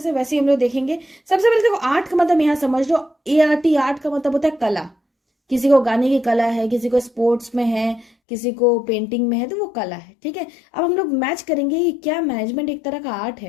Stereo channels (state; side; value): drops out; right; at 8.1 s